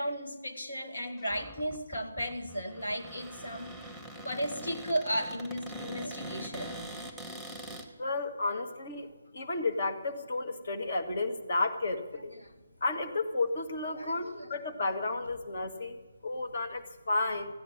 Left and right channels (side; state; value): both; inverted; correlation -0.82